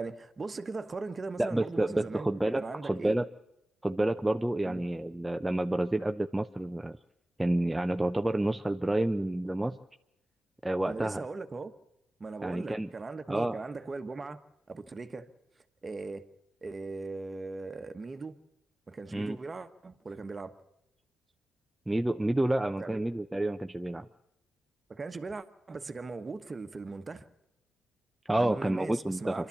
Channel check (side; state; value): both; normal; correlation 0.98